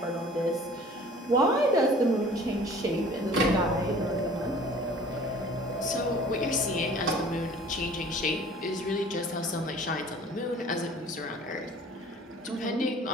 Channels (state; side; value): normal; both; correlation 0.48